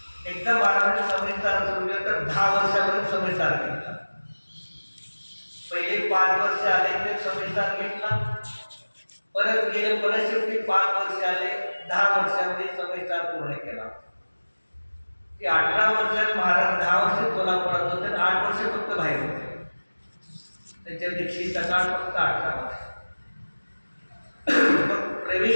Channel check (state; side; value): inverted; both; correlation -1.00